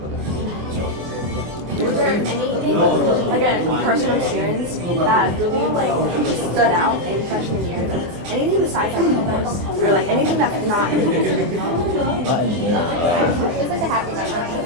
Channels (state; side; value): late; left; 24 ms